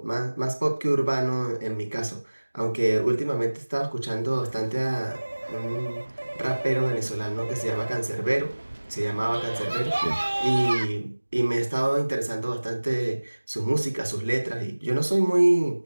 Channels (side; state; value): both; inverted; correlation -1.00